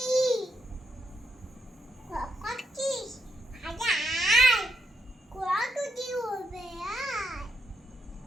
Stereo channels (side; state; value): both; normal; correlation 0.79